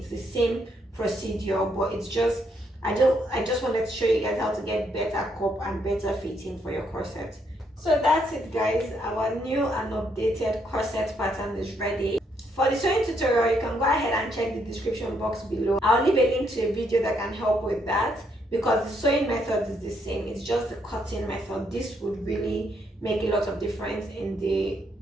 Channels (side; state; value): both; normal; correlation 0.74